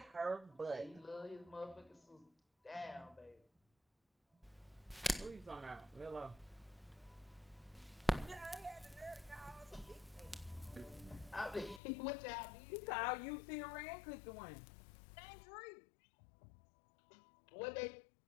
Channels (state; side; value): drops out; right; at 11.8 s